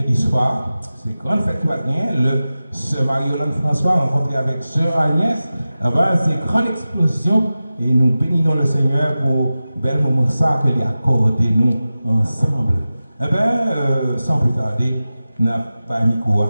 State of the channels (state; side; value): inverted; both; correlation -0.95